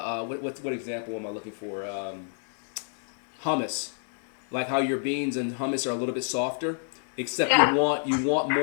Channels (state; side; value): silent; right; digital silence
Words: example am I looking for? Hummus, like how your beans and hummus are a little bit softer, except you want